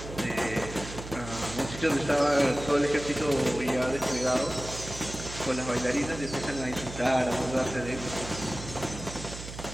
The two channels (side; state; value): right; noise; hum, 11 dB below the sound